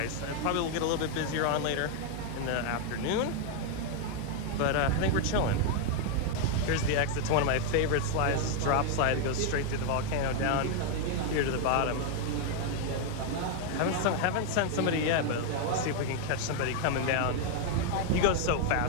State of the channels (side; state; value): both; different; correlation 0.01